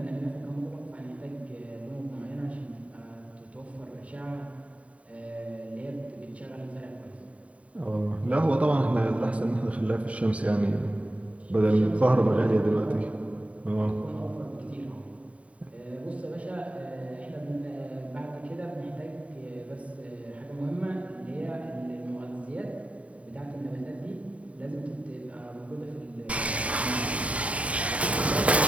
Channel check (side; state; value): left; late; 0.066 ms